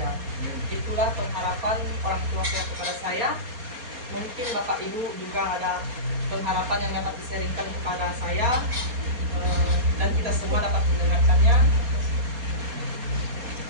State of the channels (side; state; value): left; late; 4.2 ms